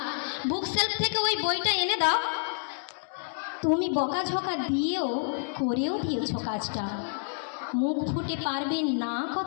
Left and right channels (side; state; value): right; silent; digital silence